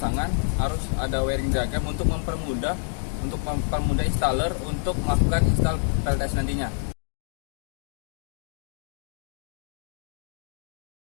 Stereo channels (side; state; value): right; silent; digital silence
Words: harus ada wiring diagram untuk mempermudah installer untuk melakukan install PLTS nantinya.